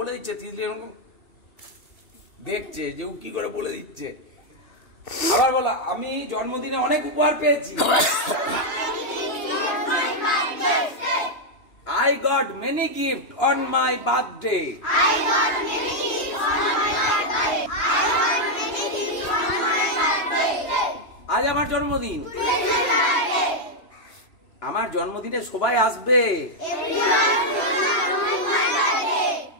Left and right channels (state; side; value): late; right; 2.9 ms